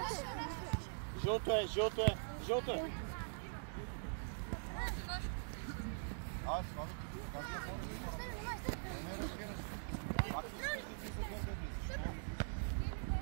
Жълто е, жълто е, жълто е. Аз, слава ти, как да хора? Не разбираш. Пак искаш да ти зададеш.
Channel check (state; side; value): silent; left; digital silence